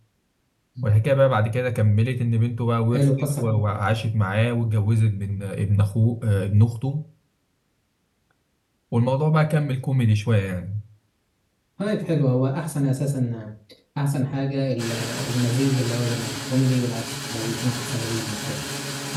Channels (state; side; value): identical; both; correlation 1.00